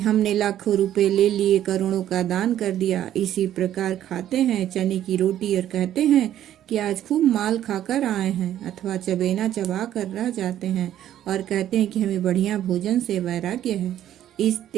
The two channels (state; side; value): quieter; left; 11.6 dB